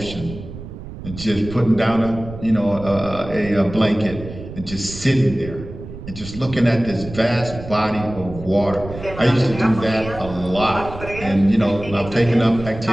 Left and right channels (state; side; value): noise; right; rumble, 12 dB below the sound